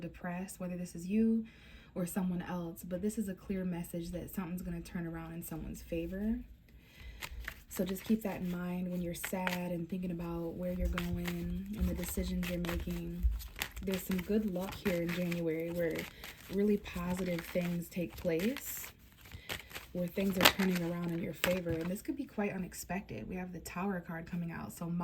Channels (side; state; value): both; identical; correlation 1.00